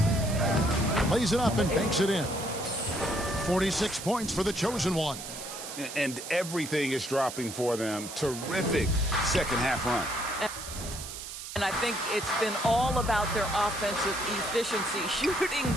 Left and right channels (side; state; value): right; noise; hiss, 10 dB below the sound